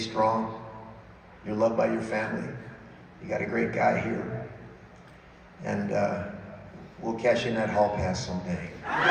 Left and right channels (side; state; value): both; identical; correlation 1.00